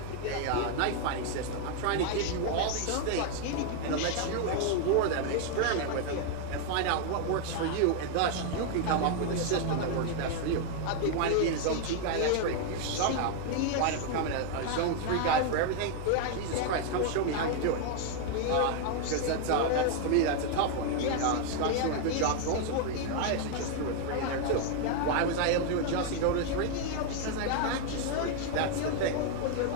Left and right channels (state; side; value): different; both; correlation 0.00